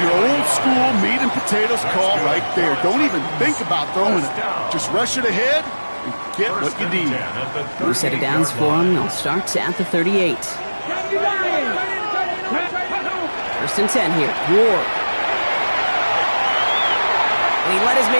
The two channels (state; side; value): inverted; both; correlation -1.00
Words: your old school meat and potatoes call right there. Don't even think about throwing it. Just rush it ahead and get what you need. New set of downs for him. They'll start at the 38. 1st and 10 here. Ward. And he let his